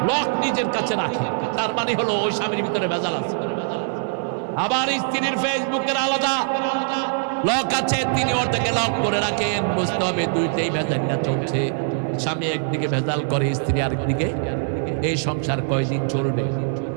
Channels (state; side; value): silent; left; digital silence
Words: লক নিজের কাছে রাখে। তার মানে হলো ওই স্বামীর ভিতরে ভেজাল আছে। আবার স্ত্রীর ফেসবুকের আলাদা লক আছে, তিনি ওটাকে লক করে রাখেন। বুঝতে হবে দুইটাই ভেজালটা চলছে। স্বামী একদিকে ভেজাল করে, স্ত্রী আরেকদিকে। এই সংসার কয়দিন চলবে?